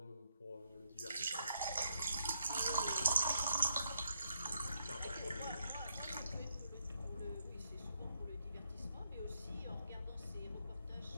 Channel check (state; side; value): inverted; both; correlation -0.78